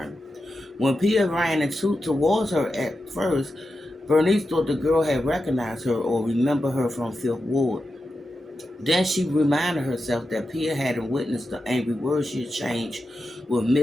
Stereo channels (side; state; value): both; normal; correlation 0.90